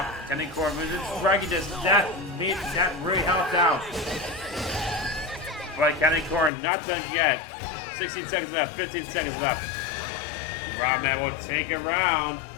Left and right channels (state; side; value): drops out; right; at 6.5 s